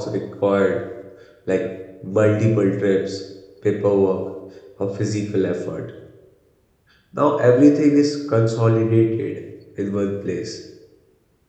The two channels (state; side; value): identical; both; correlation 1.00